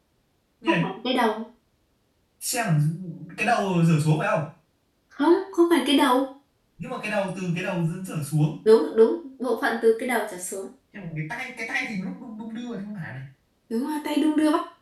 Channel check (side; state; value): both; identical; correlation 1.00